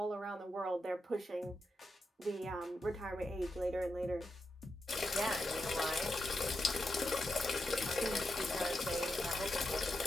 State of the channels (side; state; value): both; normal; correlation 0.87